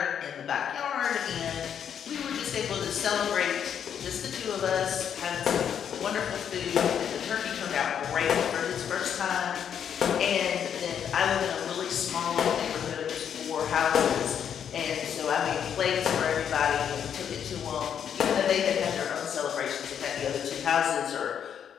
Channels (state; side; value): quieter; right; 8.5 dB